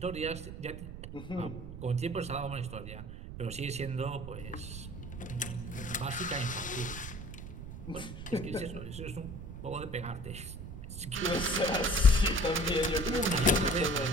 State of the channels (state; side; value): noise; right; rumble, 10 dB below the sound